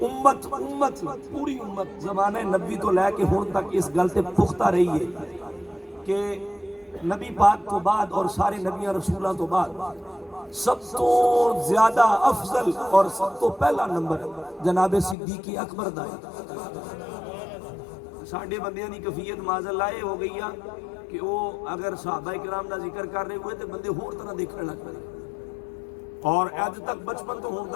امت پوری امت زمانہ نبی تو لے کے ہون تک اس گل تے پختہ رہی ہے کہ نبی پاک کو بعد اور سارے نبیاں رسولاں تو بعد سب تو زیادہ افضل اور سب تو پہلا نمبر جناب صدیق اکبر دا ہے۔ ساڑھے بندیاں دی کفیت معاذ اللہ ہو گئی ہے کہ وہ اگر صحابہ کرام دا ذکر کر رہے ہوئے تو بندے ہور طرح دیکھنے لگ پڑے، اور اج تک بچپن تو ہون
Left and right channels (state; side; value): drops out; right; at 15.2 s